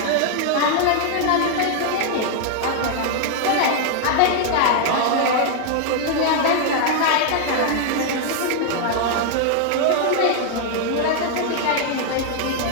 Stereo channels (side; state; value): both; different; correlation 0.00